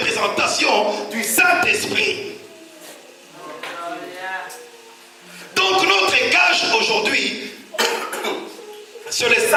du Saint-Esprit. Donc notre gage aujourd'hui, sur le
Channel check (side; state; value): both; identical; correlation 1.00